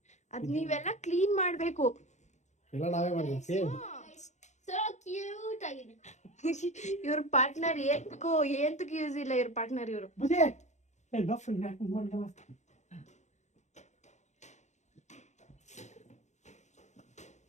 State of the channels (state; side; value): late; right; 0.34 ms